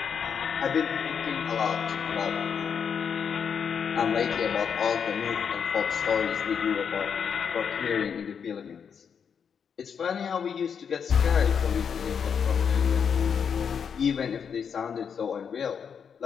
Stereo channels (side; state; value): right; quieter; 7.0 dB